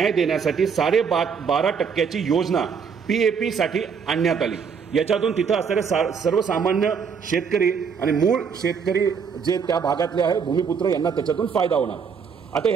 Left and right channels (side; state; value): left; quieter; 6.3 dB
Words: देण्यासाठी 12.5% योजना PAP साठी आणण्यात आली. याच्यातून तिथं असणारे सर्वसामान्य शेतकरी आणि मूळ शेतकरी जे त्या भागातले आहे भूमिपुत्र यांना त्याच्यातून फायदा होणार. आता